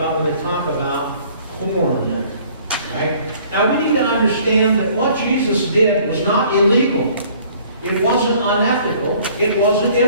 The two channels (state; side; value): inverted; both; correlation -0.56